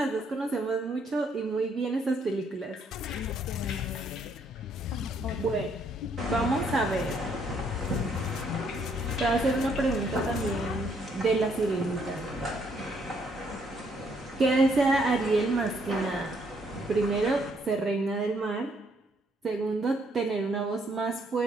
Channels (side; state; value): both; normal; correlation 0.69